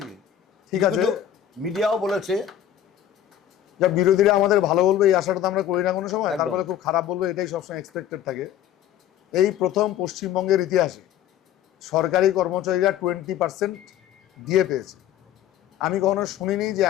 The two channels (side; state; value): right; quieter; 10.8 dB